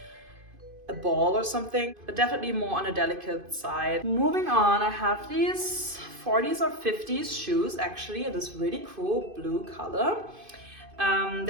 a ball or something, but definitely more on a delicate side. Moving on, I have these 40s or 50s shoes actually in this really cool blue color.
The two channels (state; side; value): late; left; 2.5 ms